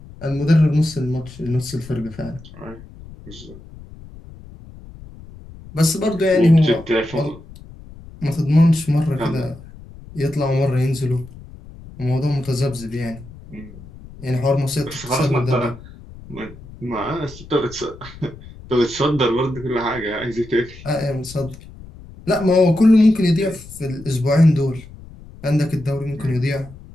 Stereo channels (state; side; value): noise; left; rumble, 18 dB below the sound